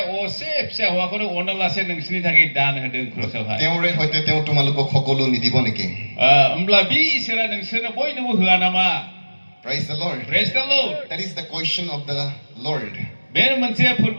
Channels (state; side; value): inverted; both; correlation -1.00